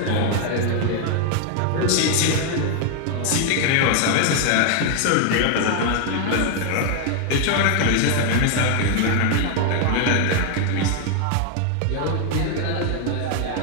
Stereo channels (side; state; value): both; different; correlation 0.00